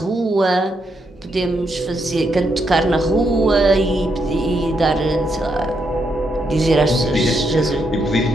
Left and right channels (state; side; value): normal; both; correlation 0.79